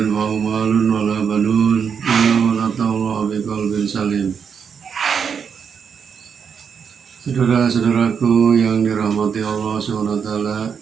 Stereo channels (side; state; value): left; quieter; 6.8 dB